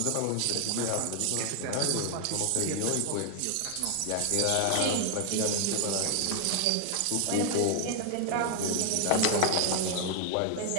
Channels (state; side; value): different; both; correlation 0.00